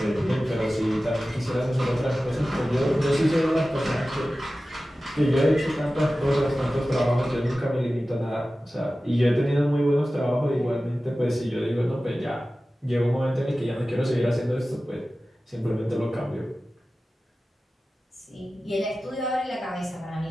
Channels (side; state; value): both; normal; correlation 0.95